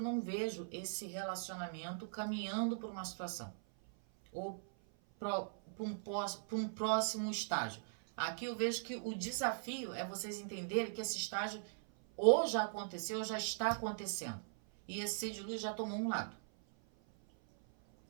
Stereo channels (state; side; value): silent; left; 51 dB below the other